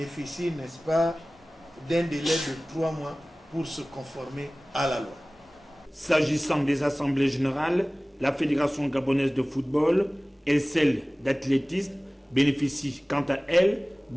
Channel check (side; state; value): both; normal; correlation 0.98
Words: n'est-ce pas, d'un délai de 3 mois pour se conformer à la loi. S'agissant des assemblées générales, la Fédération gabonaise de football et celle d'athlétisme bénéficient quant à elle